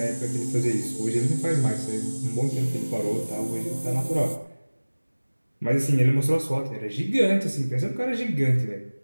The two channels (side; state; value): both; inverted; correlation -1.00